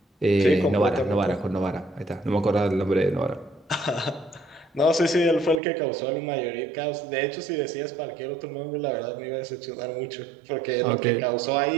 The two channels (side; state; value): left; drops out; at 5.6 s